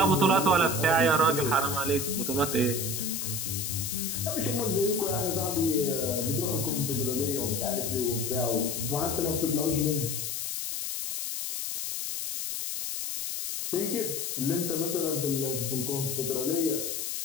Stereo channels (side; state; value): left; noise; hiss, 3 dB below the sound